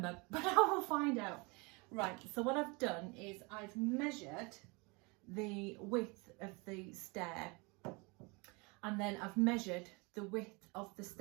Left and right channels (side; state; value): left; quieter; 28.6 dB